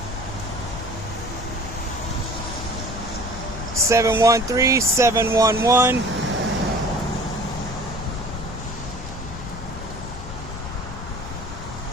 Seven 113 711.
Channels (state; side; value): noise; left; rumble, 10 dB below the sound